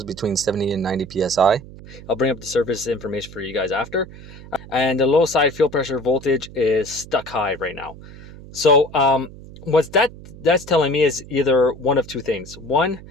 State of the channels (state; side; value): noise; right; hum, 17 dB below the sound